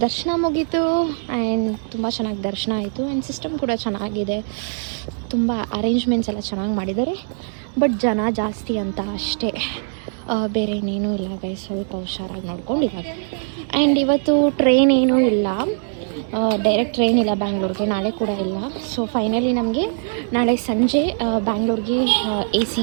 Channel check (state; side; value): silent; left; digital silence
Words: ದರ್ಶನ ಮುಗೀತು. ಆ್ಯಂಡ್ ತುಂಬ ಚೆನ್ನಾಗಿ ದರ್ಶನ ಆಯಿತು. ಆ್ಯಂಡ್ ಸಿಸ್ಟಮ್ ಕೂಡ ಚೆನ್ನಾಗಿದೆ, ತುಂಬ ಅರೇಂಜ್ಮೆಂಟ್ಸ್ ಎಲ್ಲ ಚೆನ್ನಾಗಿ ಮಾಡಿದ್ದಾರೆ. ಬಟ್ ಜನ ಜಾಸ್ತಿ ಅಂತ ಅಷ್ಟೇ, ಬೇರೆ ಇನ್ನೇನೂ ಇಲ್ಲ ಗೈಸ್. ಸ್ವಲ್ಪ ಹುಷಾರಾಗಿ ನೋಡ್ಕೊಂಡು ಇವಾಗ. ಆ್ಯಂಡ್ ಇವತ್ತು ಟ್ರೈನ್ ಏನೂ ಇಲ್ಲ, ಡೈರೆಕ್ಟ್ ಟ್ರೈನ್ ಇಲ್ಲ ಬ್ಯಾಂಗ್ಳೂರ್ಗೆ, ನಾಳೆ ಕೂಡ ಇಲ್ಲ. ಸೊ ಫೈನಲಿ ನಮಗೆ ನಾಳೆ ಸಂಜೆ ಬ್ಯಾಂಗ್ಳೂರ್ಗೆ AC